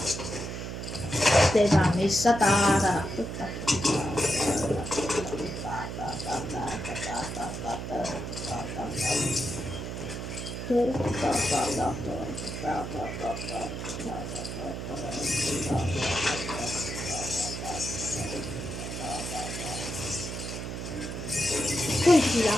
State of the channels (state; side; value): noise; right; hum, 6 dB below the sound